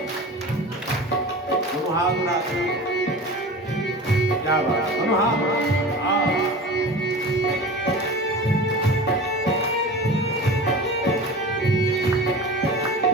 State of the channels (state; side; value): normal; both; correlation 0.34